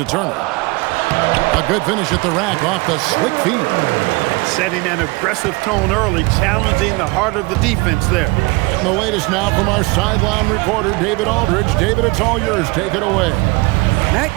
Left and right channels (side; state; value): left; quieter; 25.5 dB